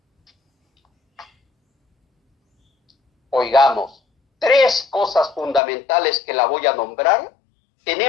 Oigamos, 3 cosas fundamentales que la voy a nombrar,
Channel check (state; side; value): drops out; right; at 5.6 s